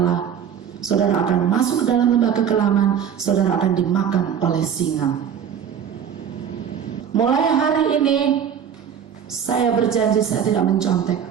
saudara akan masuk ke dalam lembah kekelaman, saudara akan dimakan oleh singa. Mulai hari ini saya berjanji saya tidak mencontek.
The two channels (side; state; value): left; quieter; 8.3 dB